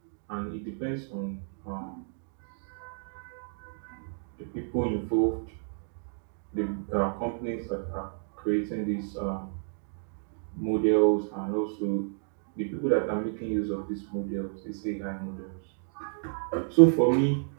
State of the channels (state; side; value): silent; left; digital silence